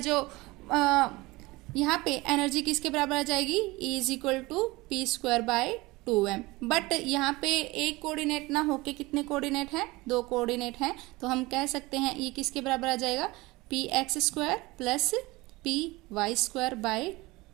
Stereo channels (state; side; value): quieter; left; 21.7 dB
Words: यहाँ पे एनर्जी किसके बराबर आ जाएगी, E is equal to p²/2m। But यहाँ पे एक कोऑर्डिनेट ना होके कितने कोऑर्डिनेट हैं, 2 कोऑर्डिनेट हैं, तो हम कह सकते हैं ये किसके बराबर आ जाएगा, px² प्लस py²